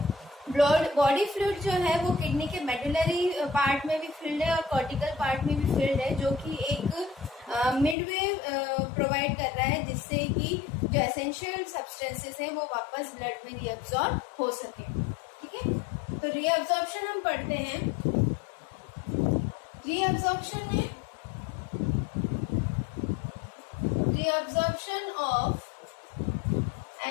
बॉडी फ्लूइड जो है वो किडनी के मेडुलरी पार्ट में भी फिल्ड है और कॉर्टिकल पार्ट में भी फिल्ड है, जो कि एक मिडवे प्रोवाइड कर रहा है जिससे कि जो एसेंशियल सब्सटेंसेस हैं वो वापस ब्लड में रीअब्सॉर्ब हो सके। ठीक है, तो रीअब्सॉर्प्शन हम पढ़ते हैं। रीअब्सॉर्प्शन में reabsorption of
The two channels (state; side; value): drops out; right; at 8.0 s